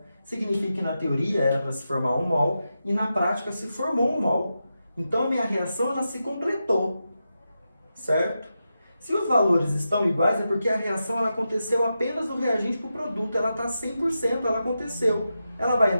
Significa que na teoria era para se formar 1 mol e na prática se formou 1 mol. Então, a minha reação ela se completou. Certo? Se os valores estão iguais, é porque a reação ela aconteceu apenas do reagente para o produto. Ela está 100%, ela aconteceu. Ela vai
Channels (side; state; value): both; inverted; correlation -0.89